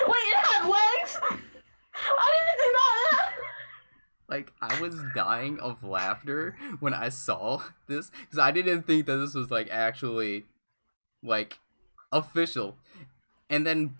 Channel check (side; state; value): both; inverted; correlation -1.00